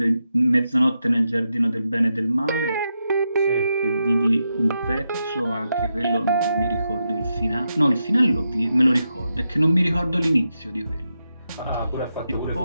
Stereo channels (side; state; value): both; inverted; correlation -0.86